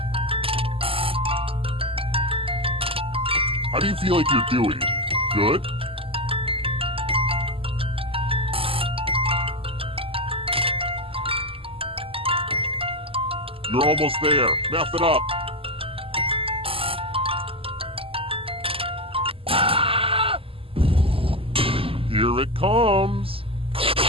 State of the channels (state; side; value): late; left; 0.26 ms